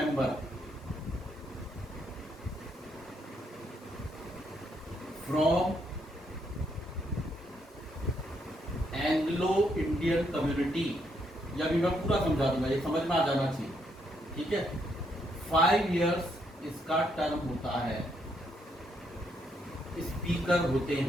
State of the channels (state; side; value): normal; both; correlation 0.75